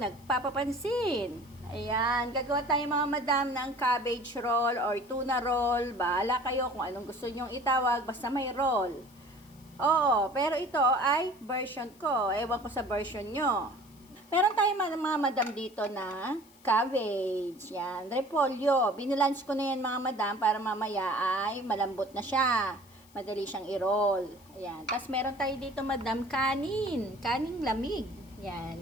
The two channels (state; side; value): noise; left; hiss, 27 dB below the sound